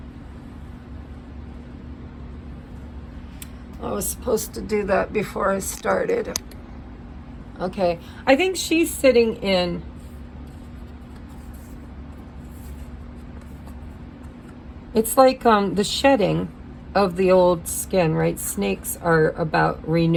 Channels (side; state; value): both; identical; correlation 1.00